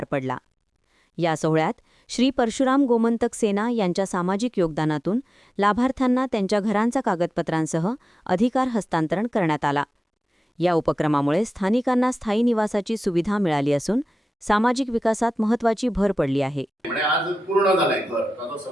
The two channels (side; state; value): both; normal; correlation 0.95